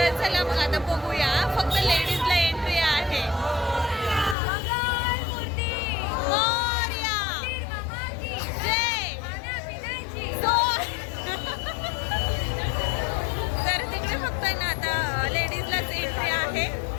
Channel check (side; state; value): right; drops out; at 4.4 s